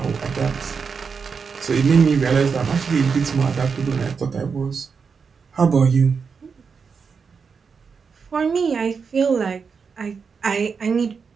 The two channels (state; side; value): quieter; left; 5.6 dB